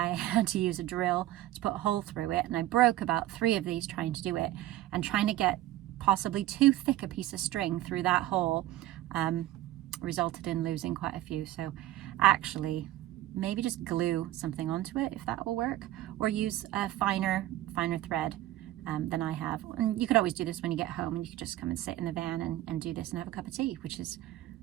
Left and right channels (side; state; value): left; quieter; 14.9 dB